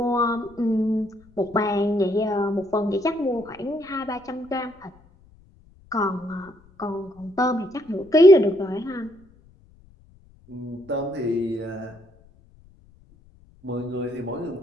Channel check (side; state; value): left; noise; rumble, 28 dB below the sound